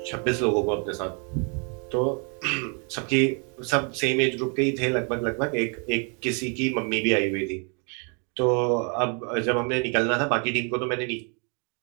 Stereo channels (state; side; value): quieter; left; 37.3 dB